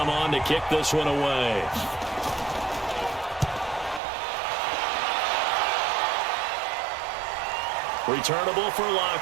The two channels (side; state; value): left; drops out; at 4.0 s